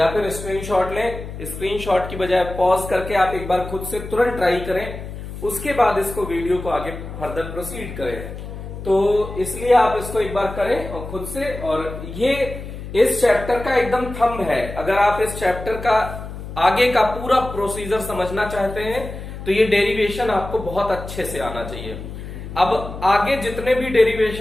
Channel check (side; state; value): left; noise; hum, 10 dB below the sound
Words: फिर स्क्रीनशॉट लें, स्क्रीनशॉट की बजाय पॉज करके आप एक बार खुद से तुरंत ट्राई करें, उसके बाद इसको वीडियो को आगे फर्दर प्रोसीड करें। तो इसलिए आप इसको एक बार करें और खुद से, और ये इस चैप्टर का एकदम थंब है। अगर आप इस चैप्टर का आगे का पूरा प्रोसीजर समझना चाहते हैं तो ये डेरिवेशन आपको बहुत अच्छे से आना चाहिए। अब आगे जितने भी